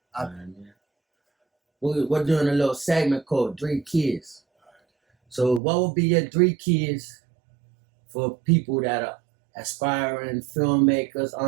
I We're doing a little segment called 3 Keys. So what would be your 3 keys for people that are aspiring filmmakers,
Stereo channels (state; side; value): drops out; left; at 5.6 s